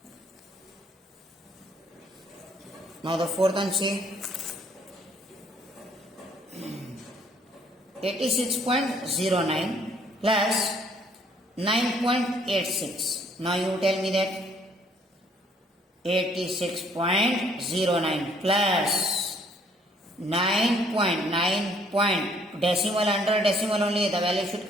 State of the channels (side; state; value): both; normal; correlation 0.63